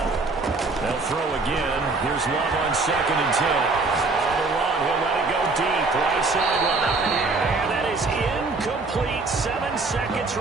They'll throw again. Here's Love on 2nd and 10. On the run, he'll let it go deep. Right sideline. And that is incomplete. 7 seconds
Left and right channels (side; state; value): left; quieter; 3.7 dB